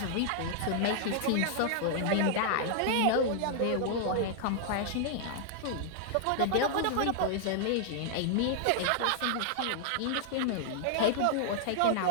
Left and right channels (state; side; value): different; both; correlation -0.01